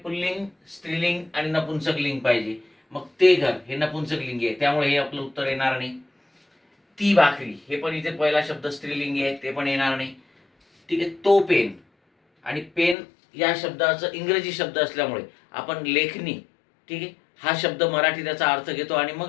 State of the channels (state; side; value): drops out; right; at 13.0 s